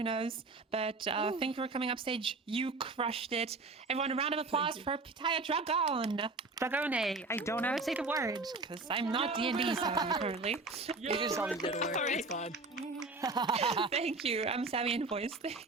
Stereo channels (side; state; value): left; quieter; 3.6 dB